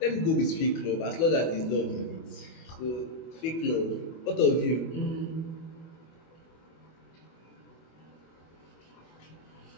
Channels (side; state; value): right; late; 24 ms